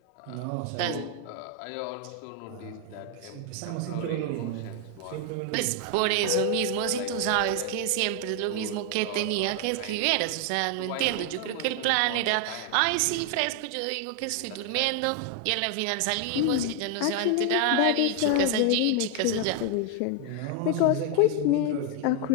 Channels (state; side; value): different; both; correlation 0.00